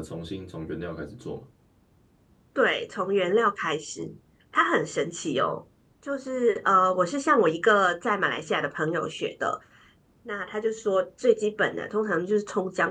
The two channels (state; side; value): identical; both; correlation 1.00